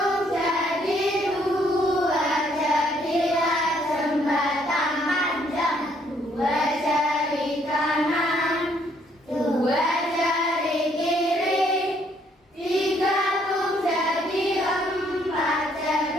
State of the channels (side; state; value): both; normal; correlation 0.67